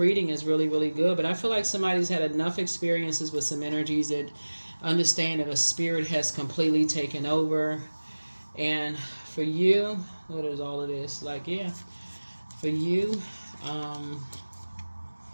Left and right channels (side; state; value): both; inverted; correlation -1.00